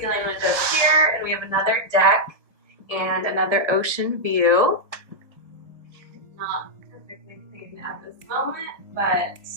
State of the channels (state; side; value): late; left; 1.7 ms